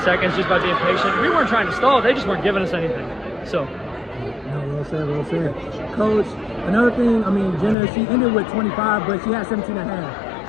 just by being patient. We weren't trying to stall. They just weren't giving us anything. So. No, well said, well said. Coach, another thing, I mean, Jenna, she ended with 25, but she had 17 and a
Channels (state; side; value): drops out; right; at 7.8 s